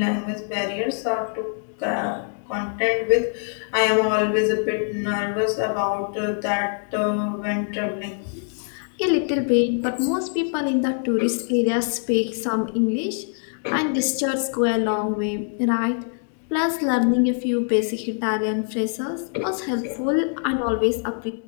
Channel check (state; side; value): silent; right; 58 dB below the other